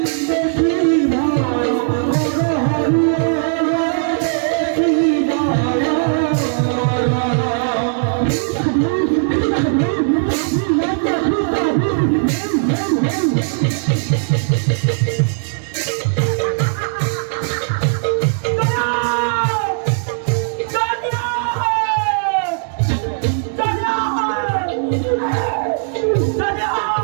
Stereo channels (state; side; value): silent; left; digital silence